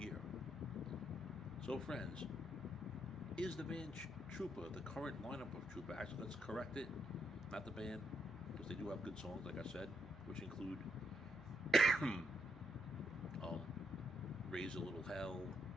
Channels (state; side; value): noise; right; hum, 19 dB below the sound